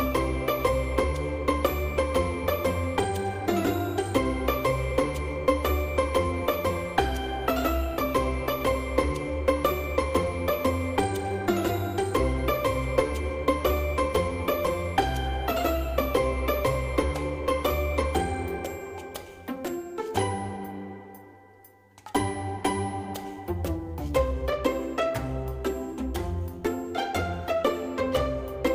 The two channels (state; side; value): identical; both; correlation 1.00